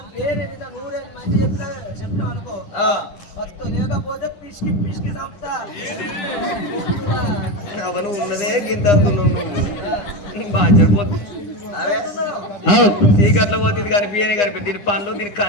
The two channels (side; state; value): right; late; 9.9 ms